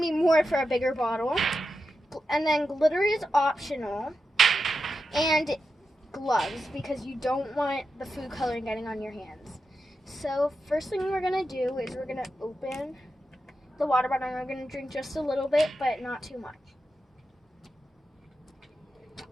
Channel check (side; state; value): both; normal; correlation 0.89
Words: more for a bigger bottle. And then glitter is optional, and gloves because you don't want the food coloring getting on your hands. So first thing we're gonna do is we're gonna open the water bottle and we're gonna drink just a little bit, but not too much.